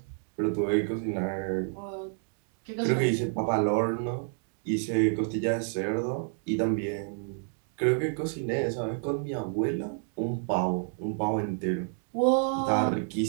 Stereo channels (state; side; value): silent; left; 58 dB below the other